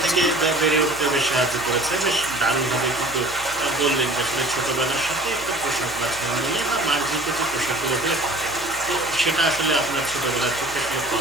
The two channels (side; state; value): left; noise; hum, 18 dB below the sound